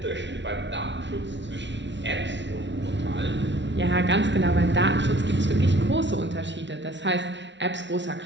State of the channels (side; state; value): left; late; 0.52 ms